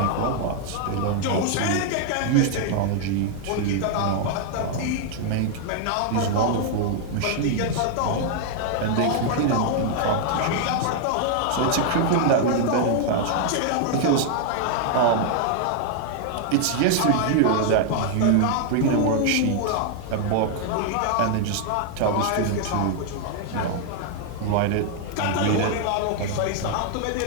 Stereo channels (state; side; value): different; both; correlation 0.00